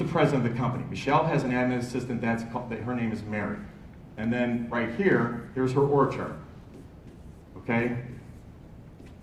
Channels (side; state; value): both; identical; correlation 1.00